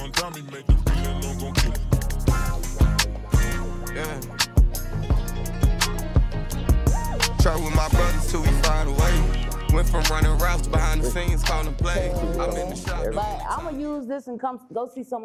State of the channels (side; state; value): both; identical; correlation 1.00